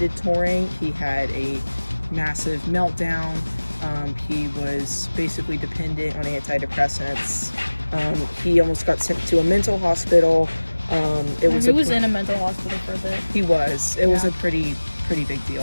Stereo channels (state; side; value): inverted; both; correlation -1.00